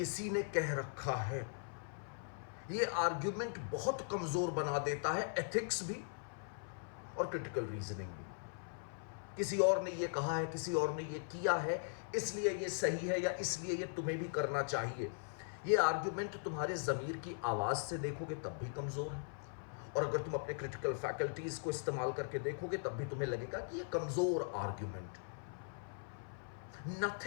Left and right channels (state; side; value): silent; right; 51 dB below the other